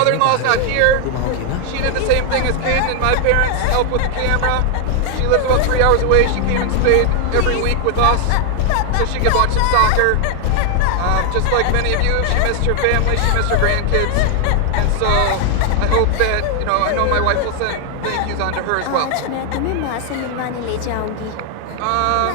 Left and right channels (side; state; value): both; different; correlation 0.00